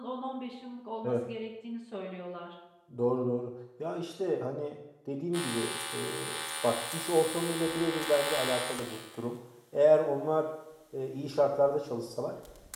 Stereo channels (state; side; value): identical; both; correlation 1.00